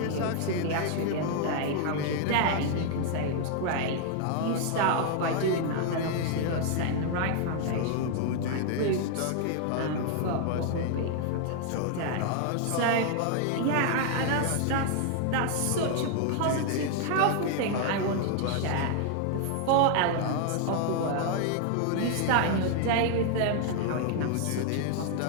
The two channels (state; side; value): different; both; correlation 0.00